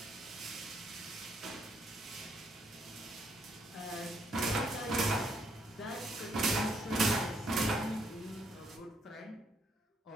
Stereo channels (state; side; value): normal; both; correlation 0.72